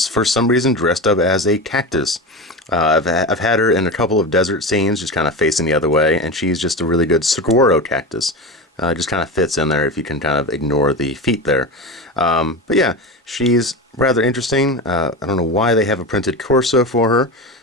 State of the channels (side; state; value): both; normal; correlation 0.23